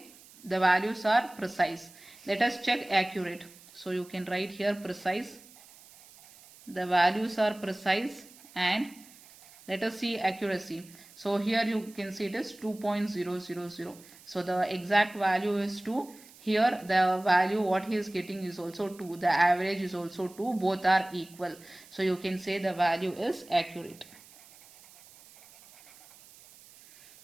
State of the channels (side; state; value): right; noise; hiss, 23 dB below the sound